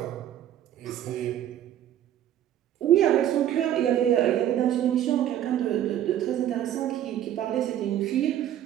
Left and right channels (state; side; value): quieter; left; 11.4 dB